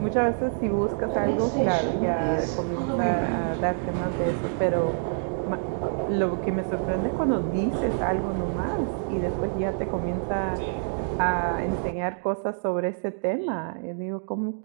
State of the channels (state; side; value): silent; left; digital silence